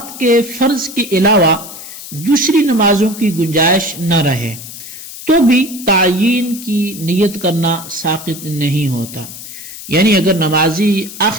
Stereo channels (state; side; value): noise; left; hiss, 13 dB below the sound